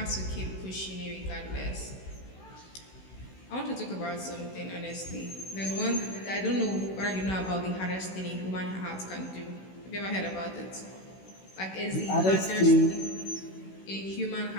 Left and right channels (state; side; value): late; right; 16 ms